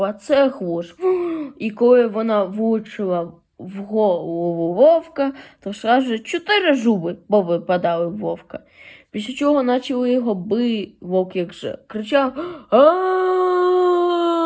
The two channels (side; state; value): both; identical; correlation 1.00